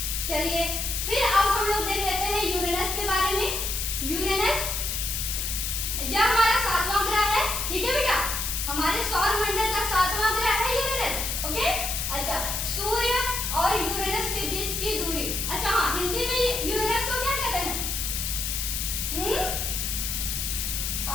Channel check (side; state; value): left; noise; hiss, 2 dB below the sound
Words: चलिए फिर अब हम लोग देख लेते हैं यूरेनस के बारे में। यूरेनस यह हमारा 7वां ग्रह है। ठीक है बेटा, हमारे सौर मंडल का 7वां ग्रह है यूरेनस। ओके, अच्छा सूर्य और यूरेनस के बीच की दूरी। अच्छा हाँ, हिंदी में यूरेनस को क्या कहते हैं?